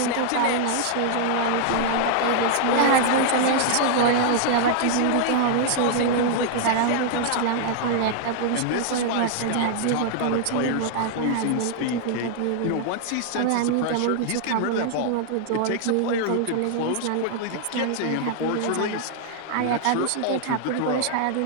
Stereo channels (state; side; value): different; both; correlation -0.01